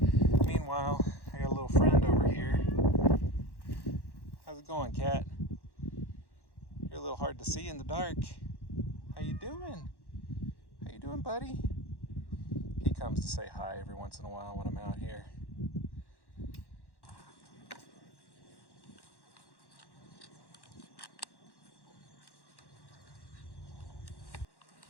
Meanwhile, I got a little friend over here. How's it going, cat? You're a little hard to see in the dark. How you doing? How you doing, buddy? He comes to say hi every once in a while when I'm out here.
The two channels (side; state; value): right; late; 1.1 ms